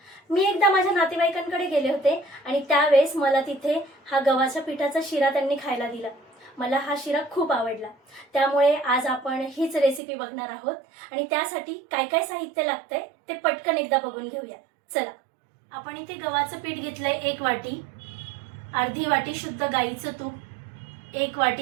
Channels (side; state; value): left; drops out; at 10.0 s